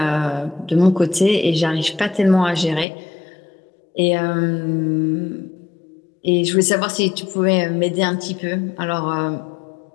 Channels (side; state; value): right; drops out; at 2.9 s